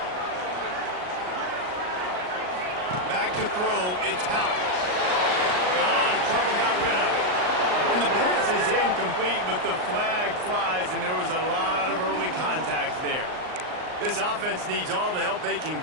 Back to throw, it's House. Got out of trouble, got rid of it. And the pass is incomplete, but the flag flies, and there was a lot of early contact there. This offense needs all the help they can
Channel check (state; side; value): late; left; 38 ms